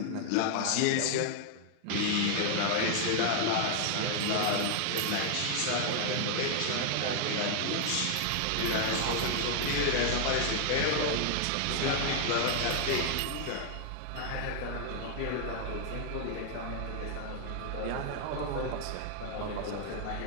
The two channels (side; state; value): both; different; correlation 0.00